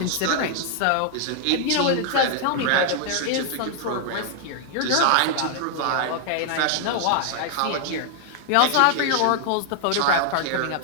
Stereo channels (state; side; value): different; both; correlation 0.00